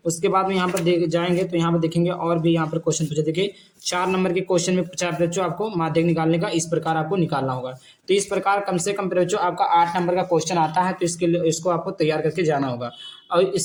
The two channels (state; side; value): identical; both; correlation 1.00